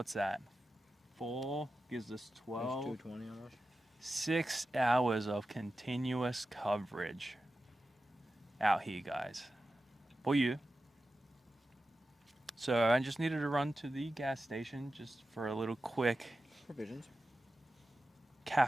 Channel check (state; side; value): normal; both; correlation 0.93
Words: that? 4 gives us 12. 2:20 almost. 6 hours of continuous coverage out here, guys. For you. So I just needed to run to the gas station just for a little quick Provisions.